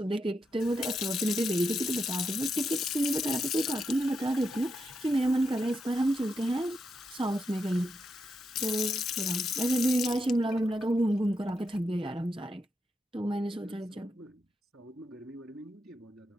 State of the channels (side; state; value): both; normal; correlation 0.84